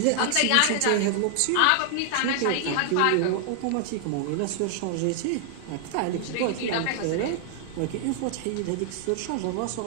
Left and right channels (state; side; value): different; both; correlation 0.00